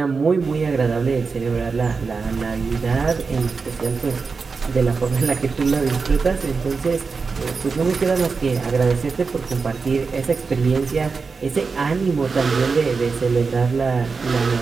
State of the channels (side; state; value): left; quieter; 4.8 dB